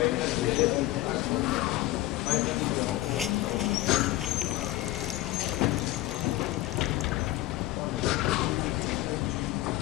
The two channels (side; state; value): right; quieter; 16.5 dB